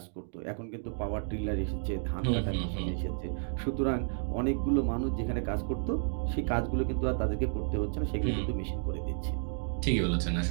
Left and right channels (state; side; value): silent; left; digital silence